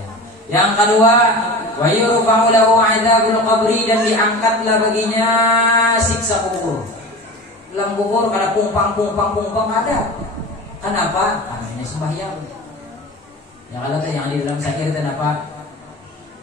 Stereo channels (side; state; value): both; normal; correlation 0.33